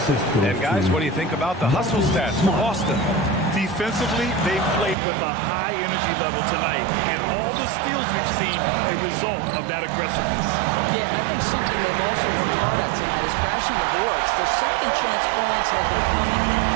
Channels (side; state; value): left; drops out; at 5.0 s